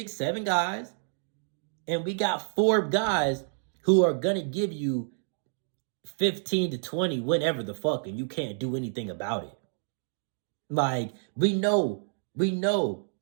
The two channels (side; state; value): left; silent; digital silence